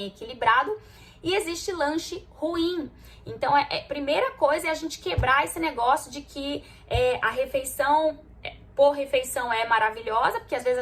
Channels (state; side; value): identical; both; correlation 1.00